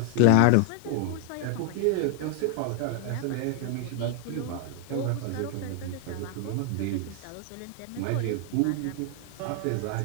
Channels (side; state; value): both; different; correlation 0.00